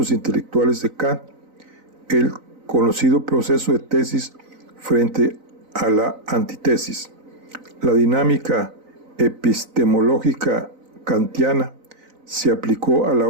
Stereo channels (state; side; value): late; left; 4.0 ms